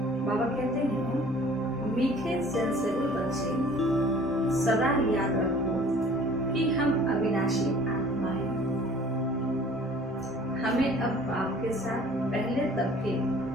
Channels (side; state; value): both; normal; correlation 0.50